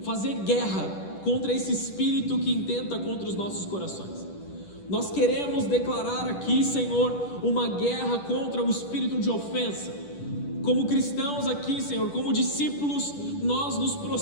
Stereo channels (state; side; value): late; right; 10 ms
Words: fazer guerra contra esse espírito que intenta contra os nossos corações. Nós queremos declarar aqui, Senhor, uma guerra contra o espírito de ofensa. Como cristãos aqui, Senhor, como discípulos, nós nos